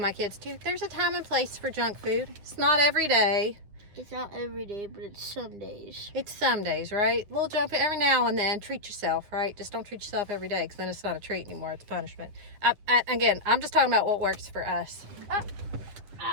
kids too, there's a time and place for junk food. It's not every day. It's not every day, but it's some days. It's some days, right? A little junk food every now and then. Treat yourself, right? Just don't treat yourself every day, because then it's not a treat anymore. It's punishment. Again, I'm just talking about what works for us.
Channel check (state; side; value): late; left; 10 ms